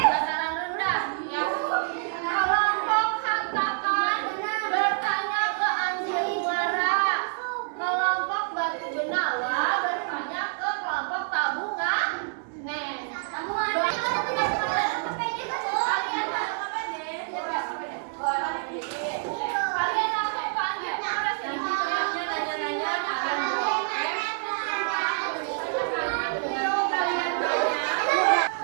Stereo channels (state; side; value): silent; left; 60 dB below the other